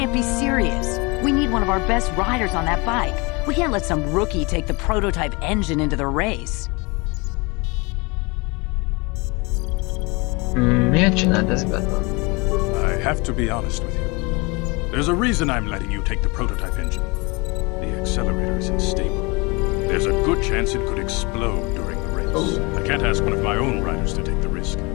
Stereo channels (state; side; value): quieter; right; 27.5 dB